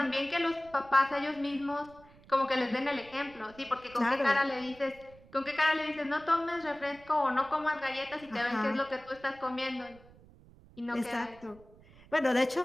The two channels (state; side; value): noise; right; rumble, 24 dB below the sound